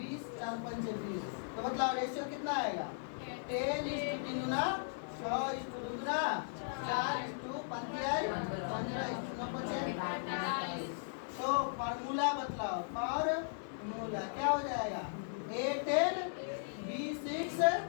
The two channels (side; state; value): right; silent; 53 dB below the other